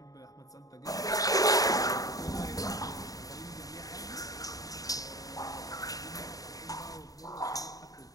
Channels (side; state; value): right; late; 0.17 ms